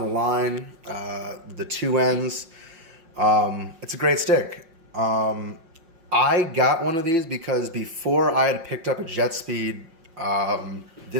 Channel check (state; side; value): late; left; 5.5 ms